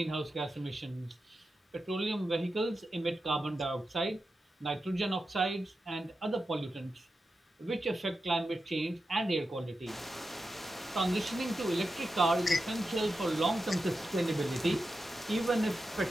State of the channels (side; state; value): both; normal; correlation 0.90